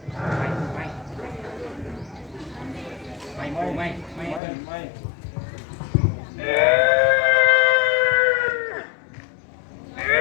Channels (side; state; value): right; drops out; at 4.4 s